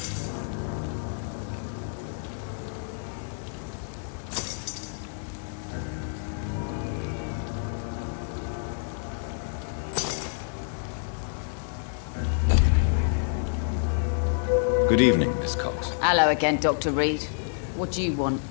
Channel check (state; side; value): silent; right; digital silence